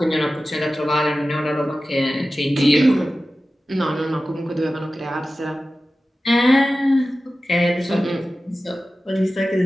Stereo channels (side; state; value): both; normal; correlation 0.95